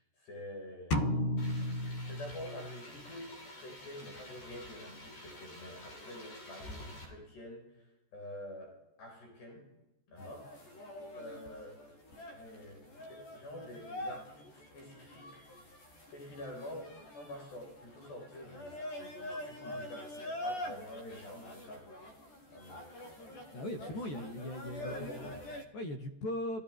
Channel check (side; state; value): right; late; 14 ms